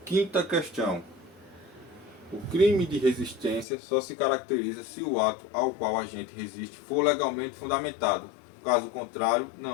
Quinta questão. O crime de resistência só se caracteriza se o ato ao qual a gente resiste for legalmente fundamentado. Caso contrário,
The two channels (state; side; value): drops out; right; at 3.7 s